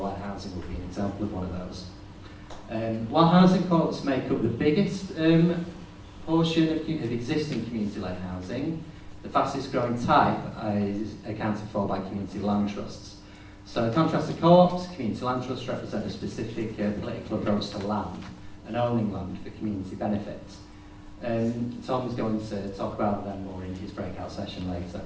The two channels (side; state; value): both; identical; correlation 1.00